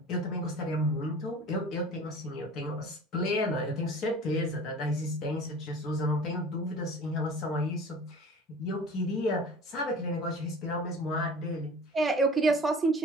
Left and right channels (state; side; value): normal; both; correlation 0.42